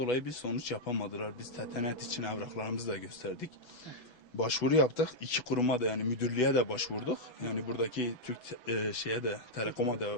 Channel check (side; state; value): right; late; 6.1 ms